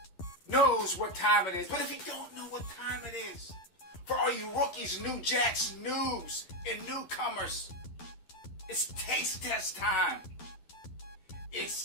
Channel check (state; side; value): late; right; 12 ms